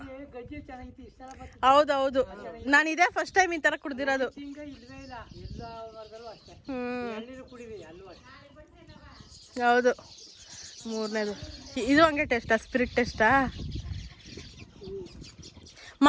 ಗಜ್ಜಿ ಚೆನ್ನಾಗಿತ್ತು ಇಷ್ಟ. ಹೌದೌದು, ನಾನು ಇದೇ ಫಸ್ಟ್ ಟೈಮ್ ಈ ತರ ಕುಡ್ದಿರೋದು. ಹಿಂಗ ಇಲ್ವೇ ಇಲ್ಲ, ಎಲ್ಲ ವರ್ಗದಲ್ಲೂ ಅಷ್ಟೇ. ಎಳ್ನೀರು ಕುಡಿವಿ ಅಲ್ಲೂ ಅಷ್ಟೇ. ಹೌದು. ಮೂರನೇದು ಇದು ಹಂಗೆ ಟೇಸ್ಟಾ? ಸ್ಪಿರಿಟ್ ಟೇಸ್ಟಾ?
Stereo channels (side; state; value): both; identical; correlation 1.00